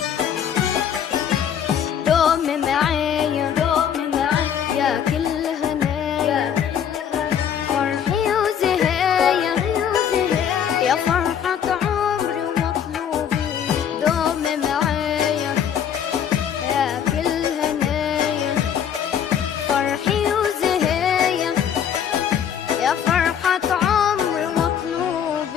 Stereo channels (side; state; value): right; quieter; 8.7 dB